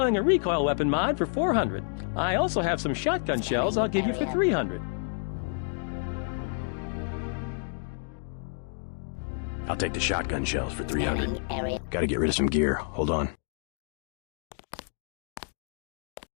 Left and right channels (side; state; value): right; silent; digital silence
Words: a recoil weapon mod for $400. I also have some shotgun shells I'll give you for $300. I'll take the shotgun shells for $300. Gotta get rid of some gear. Hold on.